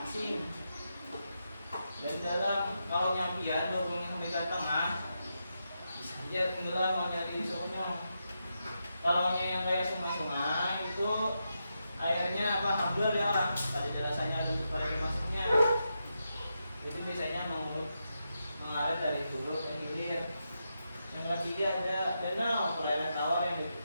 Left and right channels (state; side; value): inverted; both; correlation -0.86